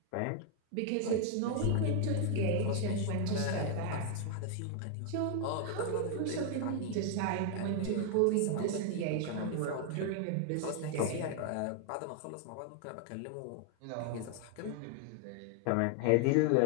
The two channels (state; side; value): different; both; correlation 0.00